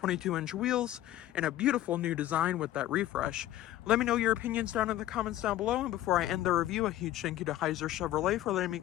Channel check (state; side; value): quieter; right; 13.9 dB